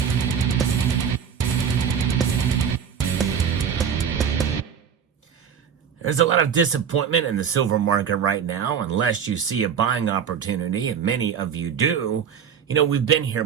There's a lot of disappointment in the silver market right now, unless you see a buying opportunity, and many of you do. You know, we've been here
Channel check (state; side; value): quieter; left; 7.6 dB